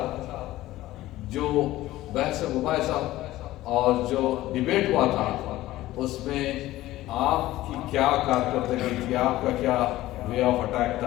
جو بحث مباحثہ اور جو ڈیبیٹ ہوا تھا، اس میں آپ کی کیا کارکردگی تھی، آپ کا کیا وے آف اٹیک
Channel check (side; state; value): right; quieter; 16.1 dB